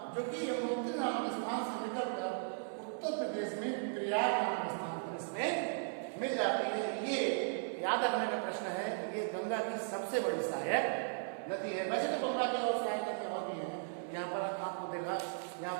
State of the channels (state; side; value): silent; left; 53 dB below the other